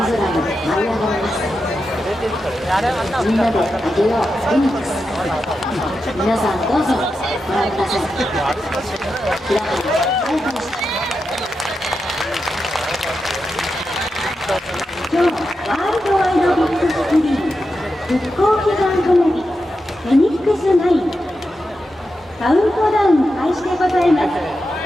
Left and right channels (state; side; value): normal; both; correlation 0.89